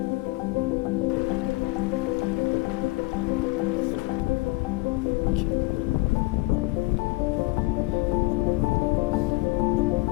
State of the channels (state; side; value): quieter; right; 22.6 dB